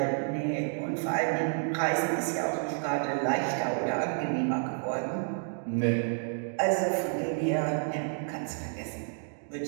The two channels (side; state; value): left; silent; 58 dB below the other